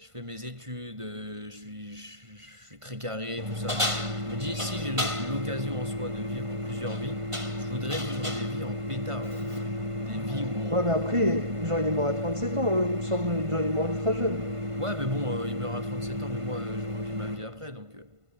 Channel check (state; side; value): late; left; 1.5 ms